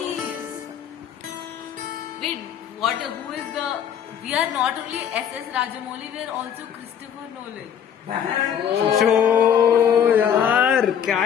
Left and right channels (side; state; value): right; quieter; 8.7 dB